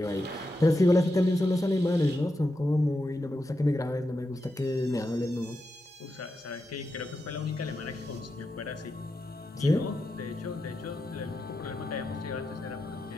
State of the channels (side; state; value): both; normal; correlation 0.87